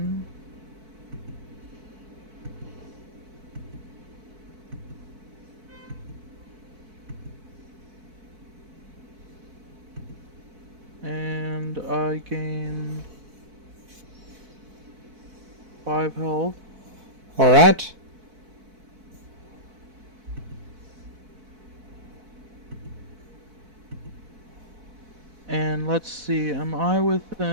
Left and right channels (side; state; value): left; late; 4.5 ms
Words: And I gain 5 health. Alright. And let's see, am I